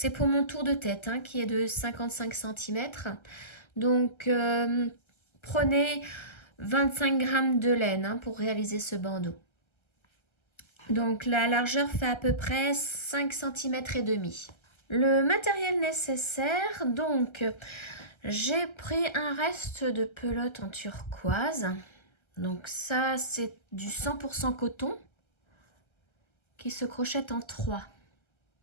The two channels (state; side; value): late; right; 1.3 ms